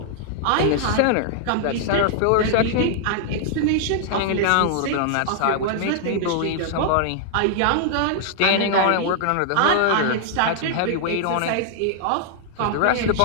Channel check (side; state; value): both; different; correlation -0.01